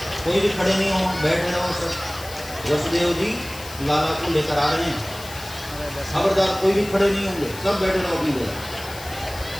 कोई भी खड़े नहीं हो, बैठे रहो सब। वसुदेव जी लाला को लेकर आ रहे हैं, खबरदार कोई भी खड़े नहीं होंगे, सब बैठे रहो अपनी जगह।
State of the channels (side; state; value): left; noise; hiss, 15 dB below the sound